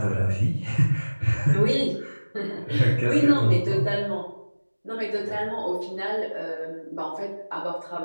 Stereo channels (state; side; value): inverted; both; correlation -1.00